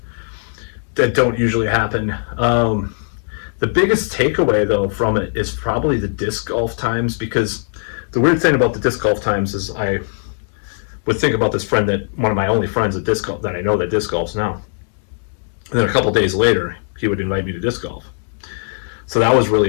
that don't usually happen. The biggest takeaway, though, from it is probably the disc golf times, because the weird thing about the disc golf times is I would think about this friend, that one of my only friends at disc golf that I know that disc golfs now. And then a couple days later, he would invite me to disc golf. So that was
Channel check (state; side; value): silent; right; 67 dB below the other